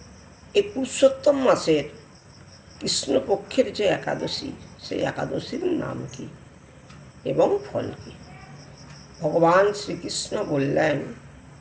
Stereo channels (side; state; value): both; identical; correlation 1.00